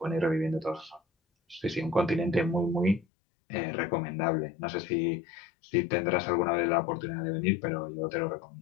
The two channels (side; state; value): right; drops out; at 3.1 s